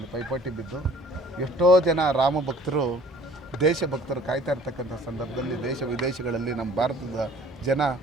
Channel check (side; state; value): both; normal; correlation 0.52